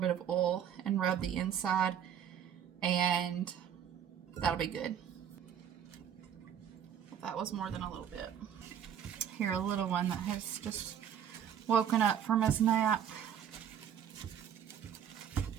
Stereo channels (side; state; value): left; quieter; 9.0 dB